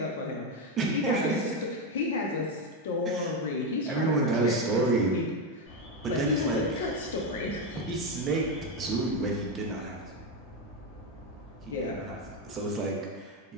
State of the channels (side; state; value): both; normal; correlation 0.09